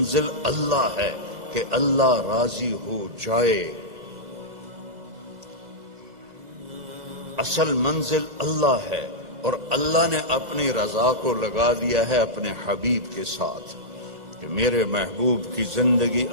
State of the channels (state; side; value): late; left; 2.0 ms